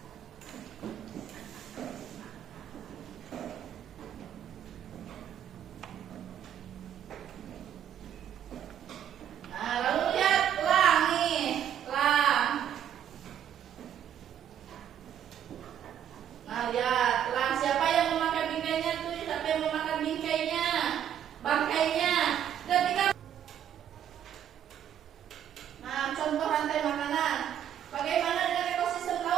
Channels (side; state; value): left; quieter; 9.8 dB